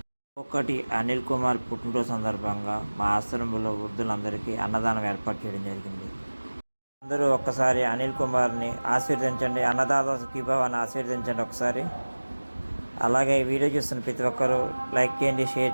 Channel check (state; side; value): inverted; both; correlation -1.00